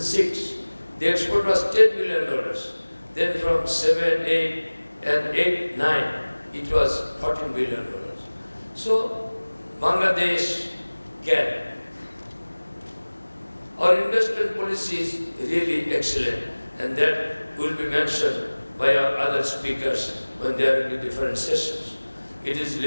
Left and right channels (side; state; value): both; inverted; correlation -1.00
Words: the export was $10 billion. Then from 7, 8, and 8, 9, it was $14 billion. So, Bangladesh can. Our investment policy is really excellent, and that will be mentioned by our other speakers when they are in the different sessions. It is